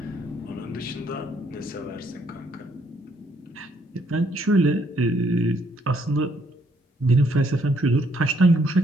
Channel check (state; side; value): normal; both; correlation 0.69